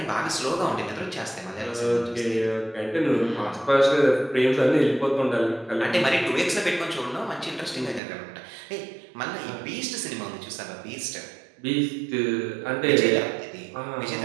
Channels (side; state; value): left; drops out; at 8.0 s